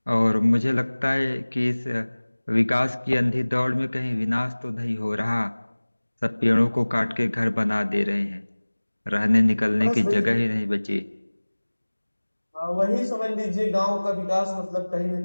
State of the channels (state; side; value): inverted; both; correlation -1.00